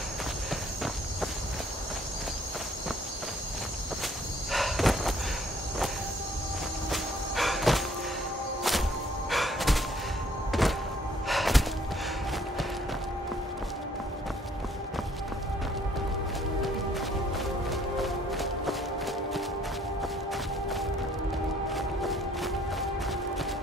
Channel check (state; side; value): normal; both; correlation 0.61